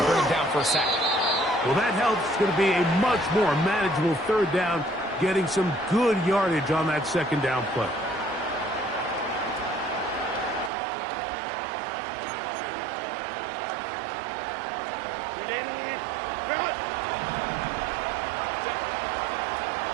him down for a sack. Well, that helps. It's going to be a much more manageable third down, getting some good yardage on that second down play.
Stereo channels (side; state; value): left; drops out; at 10.7 s